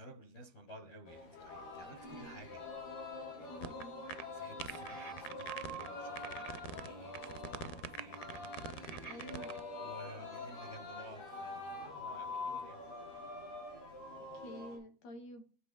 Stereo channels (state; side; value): late; right; 13 ms